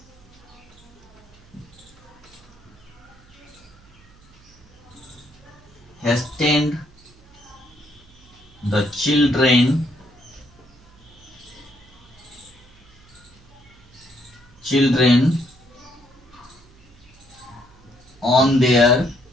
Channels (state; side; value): noise; right; hum, 26 dB below the sound